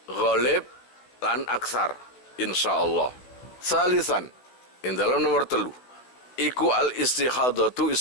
ghalib lan aksar insyaallah. Salisan in dalam nomor 3 iku al istikhadatu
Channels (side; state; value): right; late; 16 ms